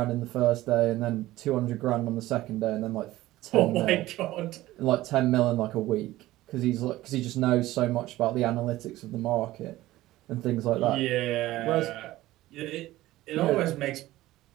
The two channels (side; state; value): left; quieter; 16.5 dB